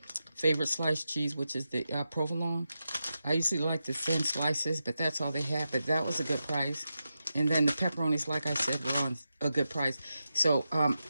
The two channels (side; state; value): both; inverted; correlation -0.90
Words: favorite sliced cheese, which is the provolone. I usually like the thin slices, but that's all they had. But that was a good price. And then the pepperonis, like I said, were on a good price. So